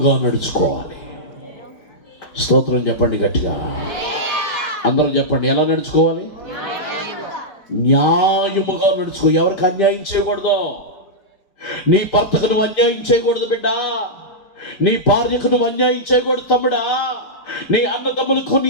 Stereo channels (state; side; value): late; right; 5.1 ms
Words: నడుచుకోవాలి. స్తోత్రం చెప్పండి గట్టిగా, అందరూ చెప్పండి. ఎలా నడుచుకోవాలి? న్యాయముగా నడుచుకో. ఎవరికి అన్యాయం చేయకూడదు. నీ భర్తకు నువ్వు అన్యాయం చేయకూడదు బిడ్డ. నీ భార్యకు నువ్వు అన్యాయం చేయకూడదు తమ్ముడా. నీ అన్నదమ్ములకు, నీ